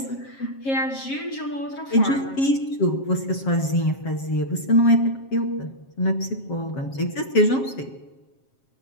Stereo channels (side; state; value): right; late; 7.4 ms